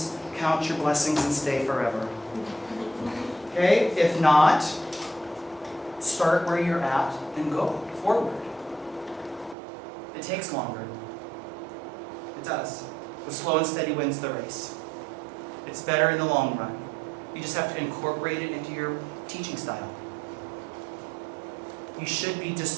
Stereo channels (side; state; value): left; drops out; at 9.6 s